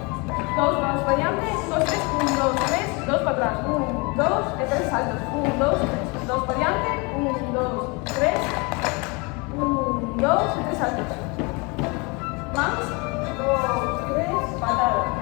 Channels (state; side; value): quieter; right; 29.0 dB